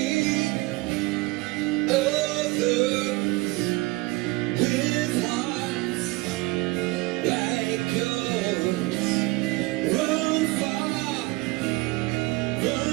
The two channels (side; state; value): left; quieter; 22.5 dB